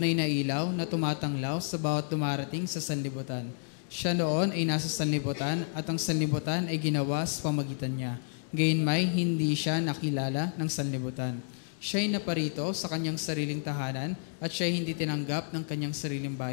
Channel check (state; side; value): silent; right; digital silence